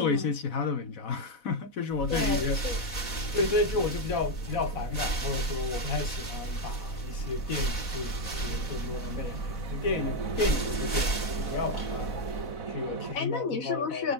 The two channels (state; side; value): late; right; 4.0 ms